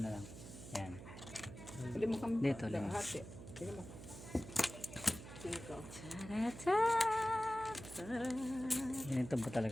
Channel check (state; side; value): noise; right; hum, 13 dB below the sound